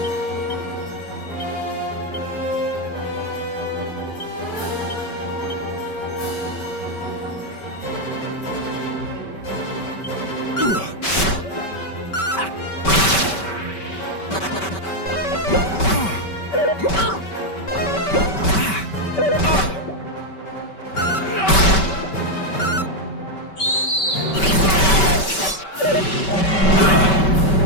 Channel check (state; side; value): late; right; 5.2 ms